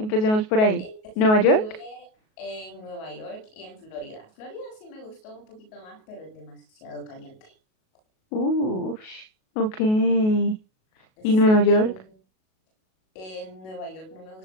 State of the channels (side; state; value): right; late; 37 ms